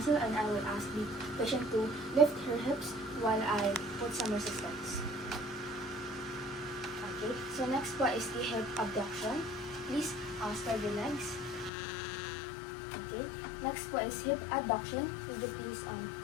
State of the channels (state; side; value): drops out; right; at 11.7 s